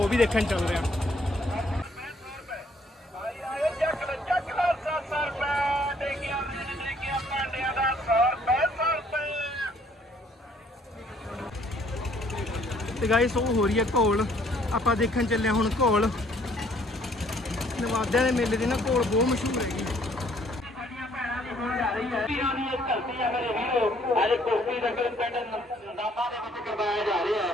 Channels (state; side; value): normal; both; correlation 0.63